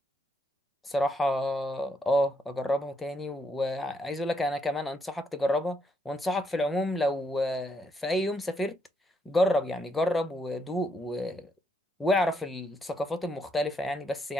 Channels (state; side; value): normal; both; correlation 0.76